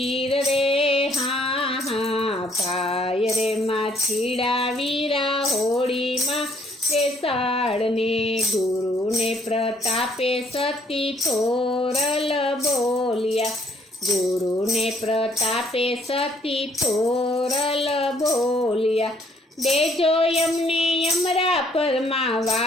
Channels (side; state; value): both; normal; correlation 0.65